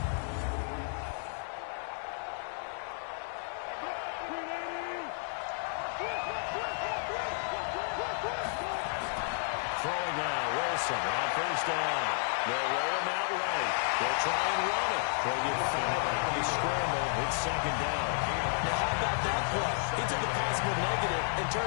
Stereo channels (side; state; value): right; silent; digital silence